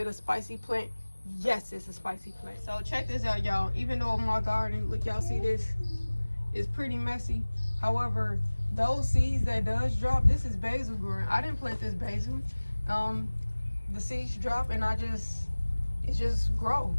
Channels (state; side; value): inverted; both; correlation -1.00